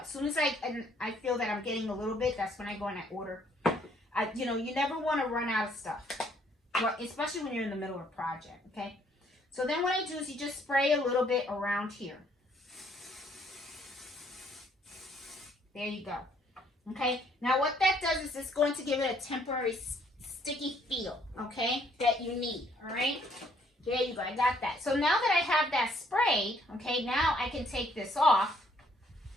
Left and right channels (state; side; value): normal; both; correlation 0.66